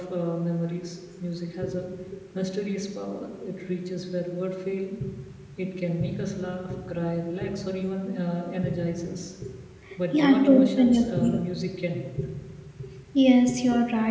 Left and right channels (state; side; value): identical; both; correlation 1.00